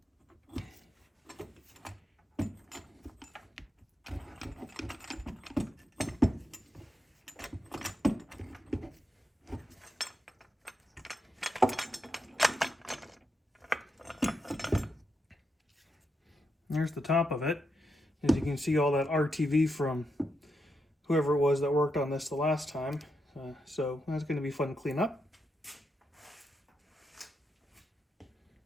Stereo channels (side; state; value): both; normal; correlation 0.84